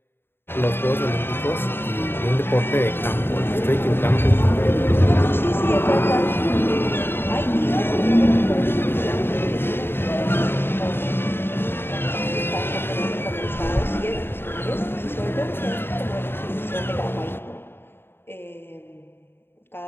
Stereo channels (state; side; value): late; right; 0.11 ms